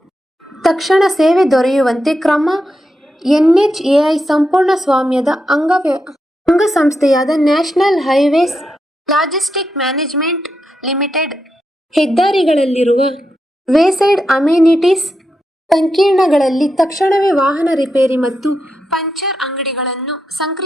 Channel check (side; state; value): both; normal; correlation 0.86